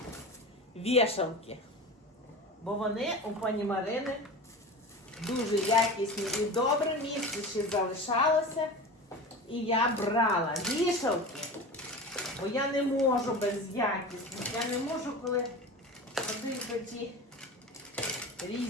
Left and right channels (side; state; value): both; normal; correlation 0.31